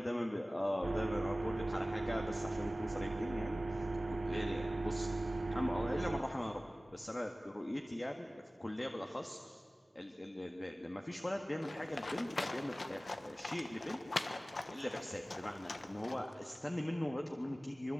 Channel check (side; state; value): both; normal; correlation 0.97